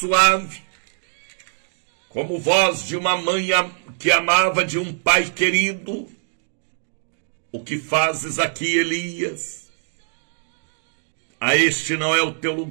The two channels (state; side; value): silent; left; digital silence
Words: como voz de uma mãe que amava, de um pai querido. O que fazes aqui, Elias? A este não é o teu